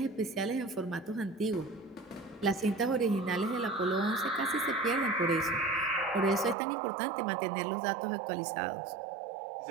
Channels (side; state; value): left; drops out; at 6.6 s